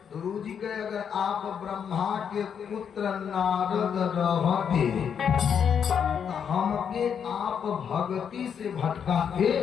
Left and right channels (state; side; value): quieter; right; 7.6 dB